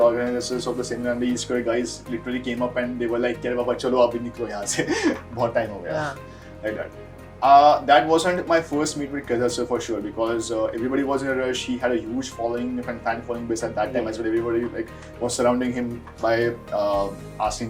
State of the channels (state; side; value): identical; both; correlation 1.00